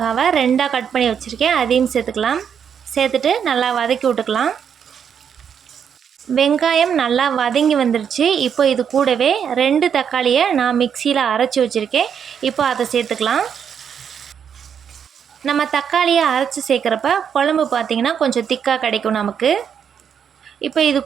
2ஆக கட் பண்ணி வச்சுருக்கேன், அதையும் சேர்த்துக்கலாம். சேர்த்துட்டு நல்லா வதக்கி விட்டுக்கலாம். வெங்காயம் நல்லா வதங்கி வந்துருச்சு. இப்போ இது கூடவே 2 தக்காளியை நான் மிக்சியில் அரைச்சி வச்சுருக்கேன். இப்போ அதை சேர்த்துக்கலாம். நம்ம தக்காளியை அரைச்சி சேர்க்குறப்ப குழம்பு பார்த்திங்கன்னா கொஞ்சம் திக்காக கிடைக்கும் நமக்கு. இப்போ இது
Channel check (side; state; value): left; quieter; 7.8 dB